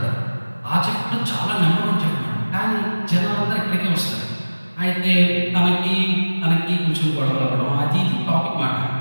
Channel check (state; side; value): inverted; both; correlation -1.00